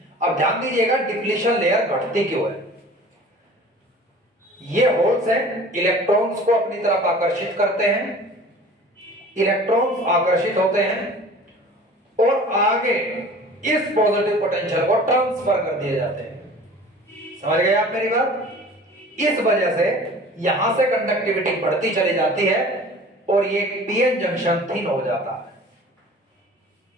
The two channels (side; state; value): both; normal; correlation 0.44